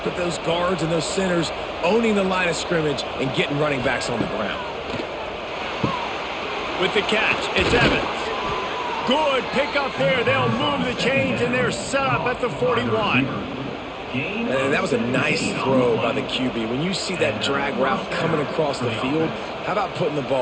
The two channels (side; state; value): both; identical; correlation 1.00